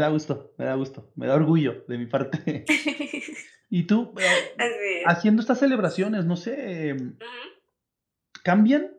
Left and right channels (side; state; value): both; identical; correlation 1.00